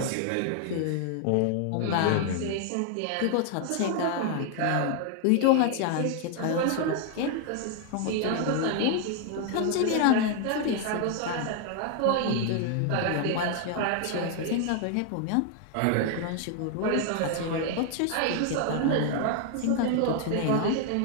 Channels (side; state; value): both; different; correlation 0.00